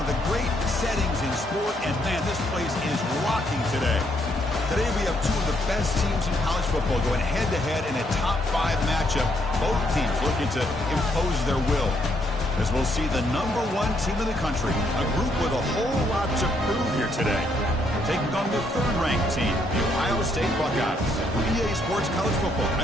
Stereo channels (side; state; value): both; normal; correlation 0.73